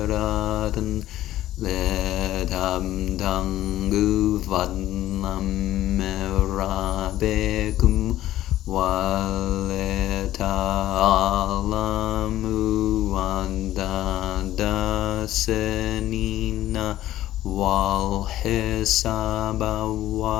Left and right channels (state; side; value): quieter; right; 14.0 dB